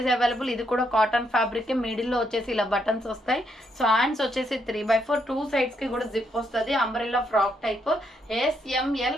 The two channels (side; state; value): both; normal; correlation 0.76